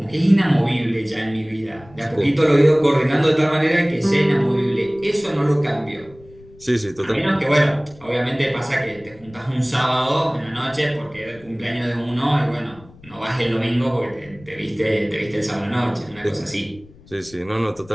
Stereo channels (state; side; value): noise; left; rumble, 24 dB below the sound